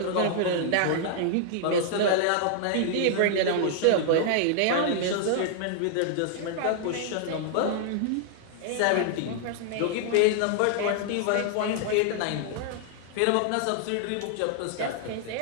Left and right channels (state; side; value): different; both; correlation -0.01